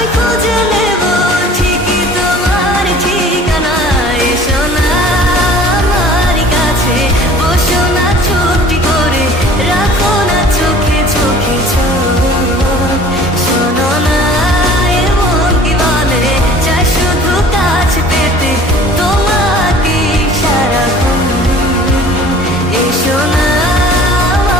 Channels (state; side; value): normal; both; correlation 0.48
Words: খুঁজে নেব ঠিকই তোমার ঠিকানা। এসো না আমার কাছে, বসো না চুপটি করে, রাখো না চোখে চোখে চোখ। শোনো না এমন কি বলে, চাই শুধু কাছে পেতে তোমাকে সারাক্ষণ। এসো না